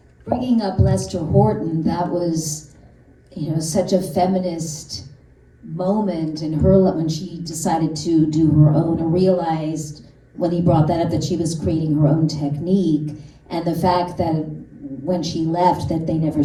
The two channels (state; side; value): identical; both; correlation 1.00